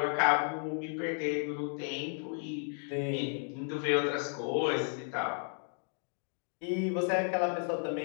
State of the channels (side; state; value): right; silent; 55 dB below the other